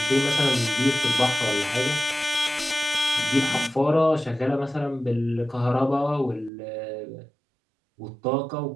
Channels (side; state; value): left; drops out; at 6.5 s